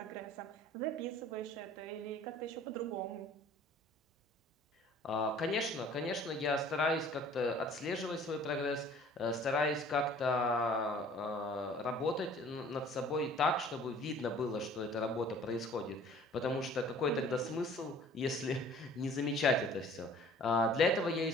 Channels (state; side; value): normal; both; correlation 0.51